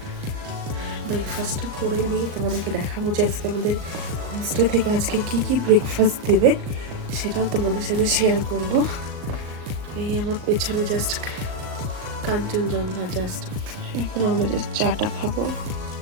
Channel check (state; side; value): late; left; 38 ms